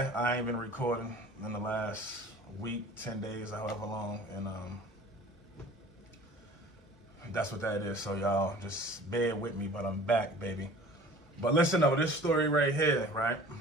I ain't been recording in the last week, 10 days, however long, and that's what that is. So y'all just bear with me, but I'm back, baby. But listen though, this story right here, right?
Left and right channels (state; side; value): normal; both; correlation 0.45